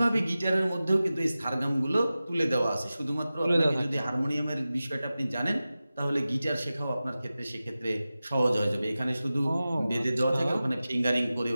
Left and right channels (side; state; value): both; inverted; correlation -0.95